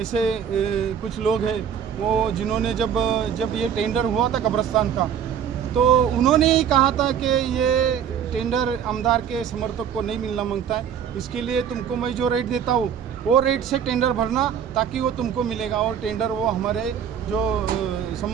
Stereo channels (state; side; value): quieter; left; 8.3 dB